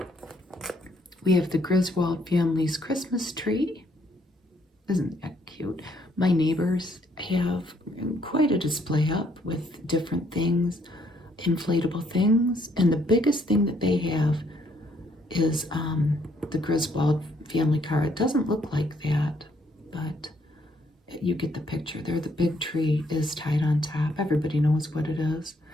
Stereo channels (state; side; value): normal; both; correlation 0.69